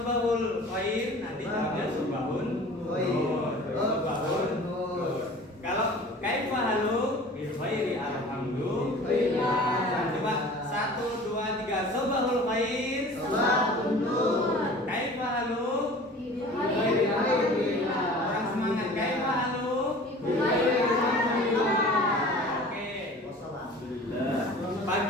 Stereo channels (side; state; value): both; normal; correlation 0.43